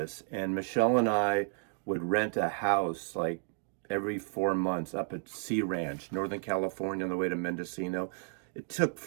and Michelle and I would rent a house like every 4 months up at Sea Ranch, Northern California, on the way to Mendocino. It took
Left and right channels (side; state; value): left; silent; 56 dB below the other